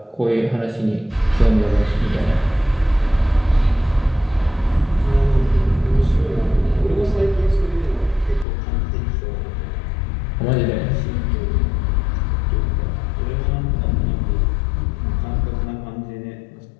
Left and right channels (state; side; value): drops out; right; at 8.5 s